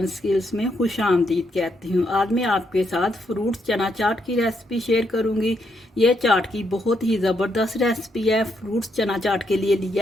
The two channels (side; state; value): both; normal; correlation 0.77